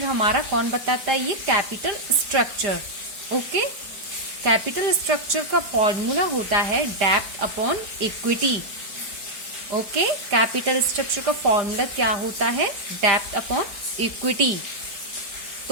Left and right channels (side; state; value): left; late; 5.0 ms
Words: हमारा? कौन बताता है? ये capital structure. Okay, capital structure का फॉर्मूला होता है डेब्ट upon equity. Okay, capital structure का फॉर्मूला क्या होता है? डेब्ट अपॉन इक्विटी।